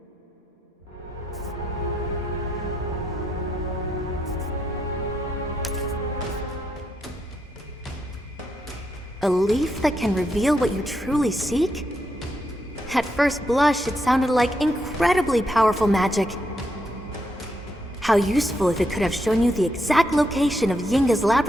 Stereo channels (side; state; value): both; normal; correlation 0.80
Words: A leaf that can reveal what you truly seek? At first blush, it sounded like incredibly powerful magic. How useful if it could have shown you the exact location of Yinga's